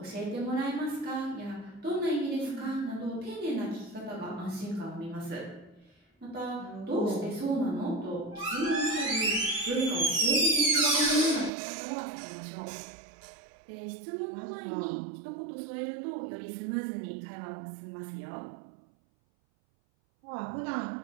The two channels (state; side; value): drops out; left; at 11.5 s